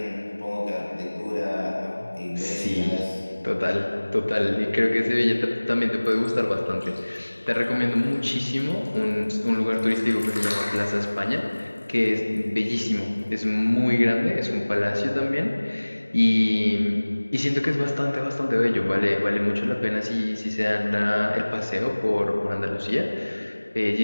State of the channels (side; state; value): both; inverted; correlation -1.00